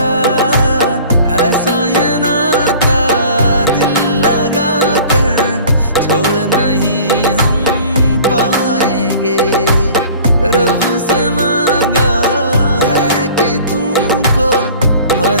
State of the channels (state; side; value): inverted; both; correlation -0.46